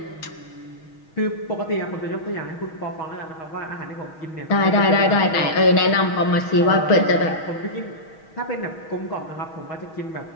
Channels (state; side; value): late; right; 6.3 ms